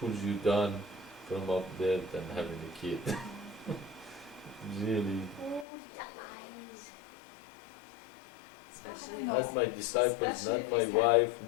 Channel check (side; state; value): right; drops out; at 5.7 s